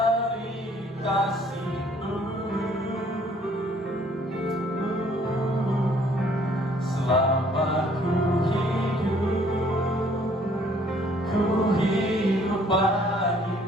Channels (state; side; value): normal; both; correlation 0.60